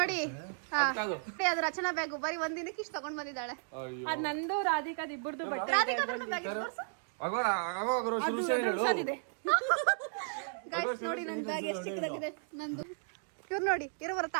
ಅದು ರಚನಾ ಬ್ಯಾಗ್ ಬರೀ ಒಂದಿನಕ್ಕೆ ಇಷ್ಟು ತಗೊಂಡ್ ಬಂದಿದ್ದಾಳೆ. ಅದ್ ನಂದು ರಾಧಿಕಾದ್ ಇಬ್ಬರದು ಬಟ್ಟೆ. ರಾಧಿಕಾ ಬ್ಯಾಗ್ ಗೈಸ್ ನೋಡಿ ನನ್ನ ಬ್ಯಾಗ್ ಎಷ್ಟು ಚಿಕ್ಕದಾಗಿದೆ ನಂದು. ಇವ್ರು ನೋಡಿ ಇರೋವರ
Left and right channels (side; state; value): left; silent; digital silence